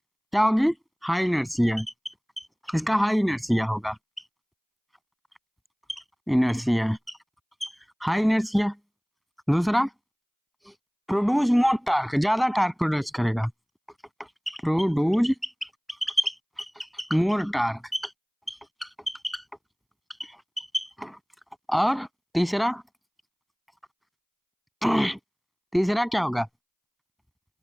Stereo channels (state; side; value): identical; both; correlation 1.00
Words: क्या होगी? High inertia. इसका हाई इनर्शिया होगा, इनर्शिया, हाई इनर्शिया। दूसरा, प्रोड्यूस मोर टार्क, ज्यादा टार्क प्रोड्यूस करेगा, प्रोड्यूस मोर टार्क। और तीसरा, तीसरा क्या होगा?